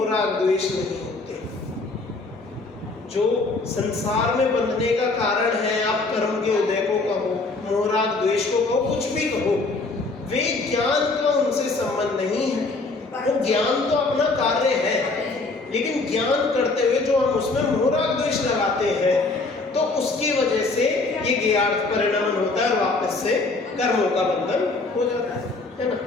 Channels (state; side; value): quieter; right; 3.6 dB